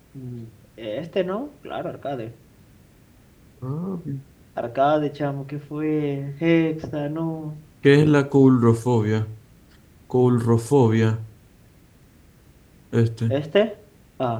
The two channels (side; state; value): both; identical; correlation 1.00